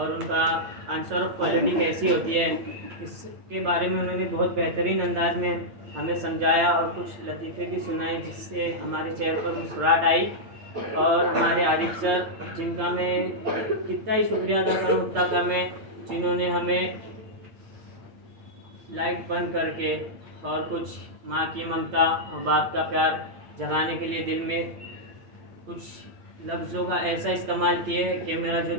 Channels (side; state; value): left; late; 8.7 ms